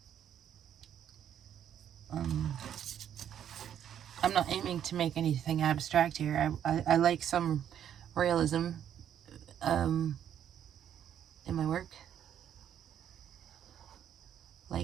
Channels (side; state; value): left; quieter; 9.7 dB